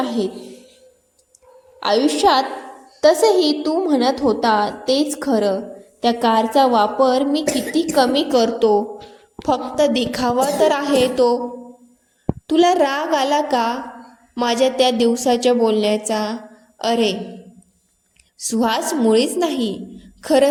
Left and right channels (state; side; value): identical; both; correlation 1.00